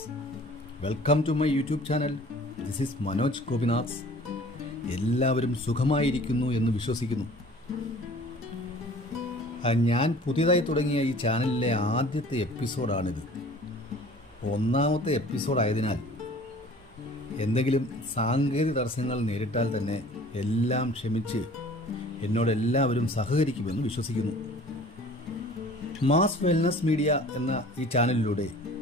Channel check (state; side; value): normal; both; correlation 0.47